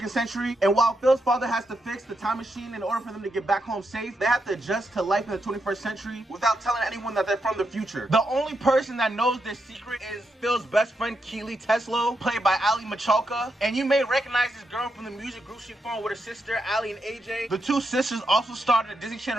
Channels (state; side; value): normal; both; correlation 0.83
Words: century, and while Phil's father has to fix the time machine in order for them to get back home safe, they have to adjust to life in the 21st century without telling anyone that they're from the future. The only person that knows this secret is Phil's best friend Keely Teslo, played by Ali Michalka. And you may recognize this girl from the music group she formed with her sister Ali and AJ. The two sisters also starred in the Disney